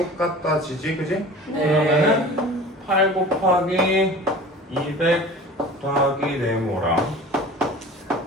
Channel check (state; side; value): normal; both; correlation 0.40